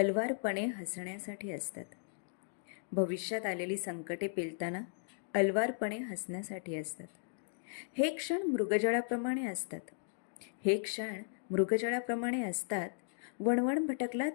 हसण्यासाठी असतात. भविष्यात आलेली संकटे पेलताना अलवारपणे हसण्यासाठी असतात. हे क्षण मृगजळाप्रमाणे असतात. हे क्षण मृगजळाप्रमाणे असतात. वणवण भटकलात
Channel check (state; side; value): silent; right; digital silence